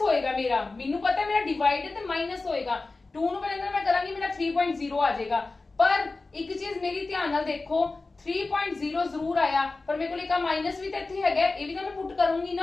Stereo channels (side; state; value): right; quieter; 3.6 dB